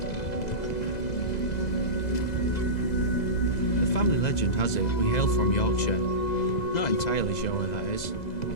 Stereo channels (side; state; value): right; late; 2.0 ms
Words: The family legend has it we hail from Yorkshire. Not entirely sure where that is.